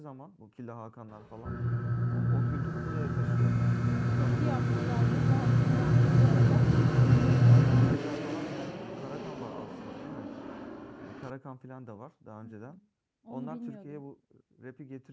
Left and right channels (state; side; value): identical; both; correlation 1.00